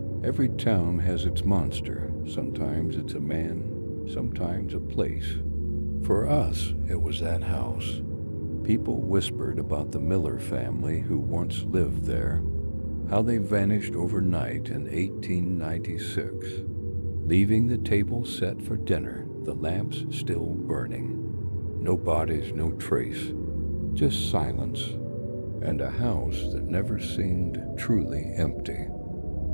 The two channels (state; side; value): inverted; both; correlation -1.00